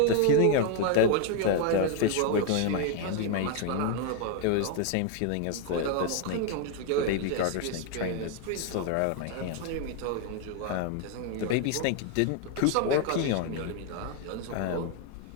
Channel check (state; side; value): different; both; correlation 0.01